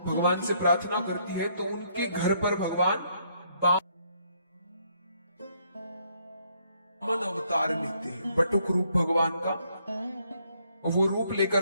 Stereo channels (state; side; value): inverted; both; correlation -0.70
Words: भगवान से प्रार्थना करती है तो उनके घर पर भगवान वामन अवतार लेते हैं, बटुक रूप भगवान का। वो रूप